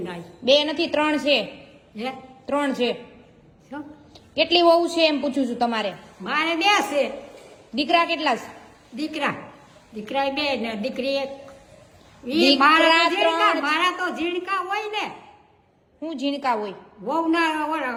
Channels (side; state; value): both; identical; correlation 1.00